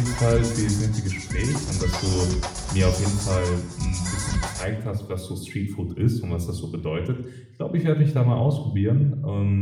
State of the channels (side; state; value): both; identical; correlation 1.00